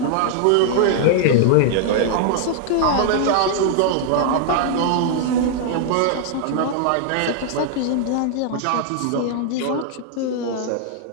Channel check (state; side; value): different; both; correlation 0.00